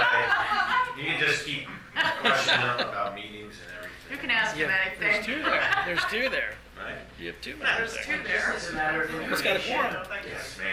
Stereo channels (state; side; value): identical; both; correlation 1.00